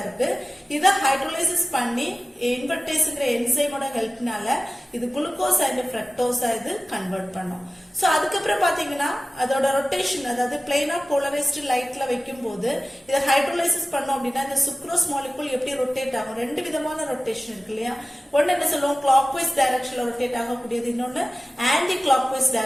இருக்கு, இத ஹைட்ரோலைசிஸ் பண்ணி இன்வெர்டேஸ்ங்கிற என்சைமோட ஹெல்ப்னால இது குளுக்கோஸ் அண்ட் ஃப்ரக்டோஸா இது கன்வெர்ட் பண்ணும். சோ அதுக்கப்புறம் பாத்தீங்கன்னா அதோட ரொட்டேஷன், அதாவது பிளைனா போலரைஸ்டு லைட்ல வைக்கும் போது இதை ஹைட்ரோலைசிஸ் பண்ணோம் அப்படின்னா இந்த சுக்ரோஸ் மாலிகுல் எப்படி ரொட்டேட் ஆகும், ரெண்டு விதமான ரொட்டேஷன் இருக்கு இல்லையா. ஒன்னு என்ன சொல்லுவோம் கிளாக் வைஸ் டைரக்ஷன்ல ரொட்டேட் ஆகக்கூடியது, இன்னொன்னு ஆன்டி கிளாக் வைஸ்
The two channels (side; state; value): both; normal; correlation 0.96